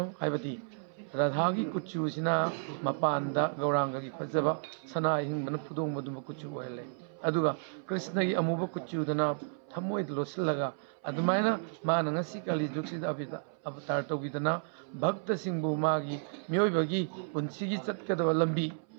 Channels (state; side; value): silent; left; 56 dB below the other